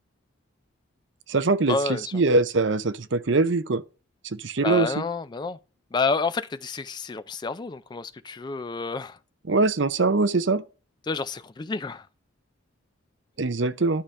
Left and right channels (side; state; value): both; normal; correlation 0.07